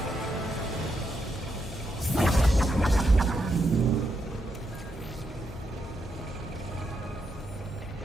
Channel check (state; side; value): normal; both; correlation 0.81